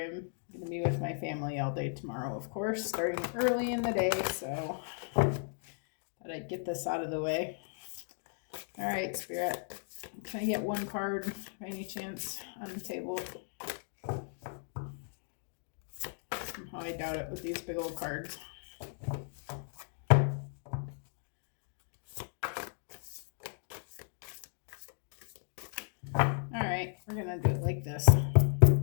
going to be with my family all day tomorrow, of course, starting early in the day, so thought I'd get this out of the way. All right, Spirit. Can I get one card by any chance on the table? Somehow I doubt it with these big old cards. Alright, we're gonna do it like this.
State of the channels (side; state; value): right; silent; digital silence